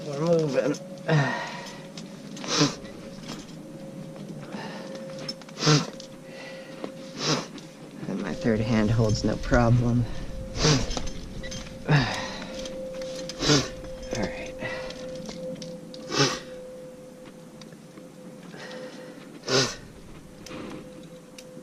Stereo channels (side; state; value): both; identical; correlation 1.00